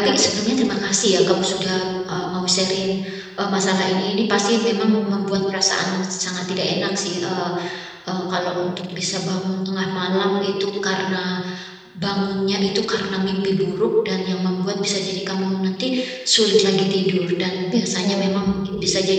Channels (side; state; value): both; identical; correlation 1.00